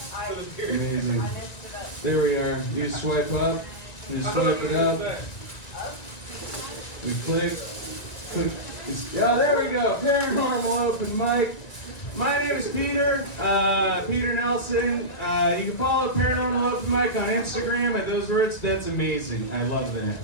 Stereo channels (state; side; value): late; right; 1.9 ms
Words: Amazing. There we are. You swipe up. You swipe it up. We click. Yeah, there we go. Paranormal Open Mic. My name is Peter. Peter Nelson. You can follow Paranormal Open Mic on Instagram at those words. That's amazing. I love that.